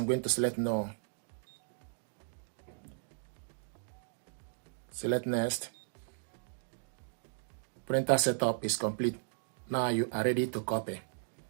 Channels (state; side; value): silent; left; digital silence